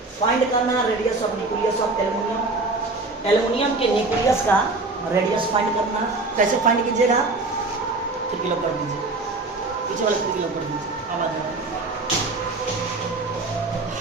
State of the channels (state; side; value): quieter; left; 3.3 dB